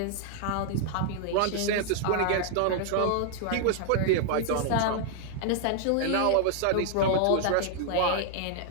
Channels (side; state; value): both; different; correlation 0.00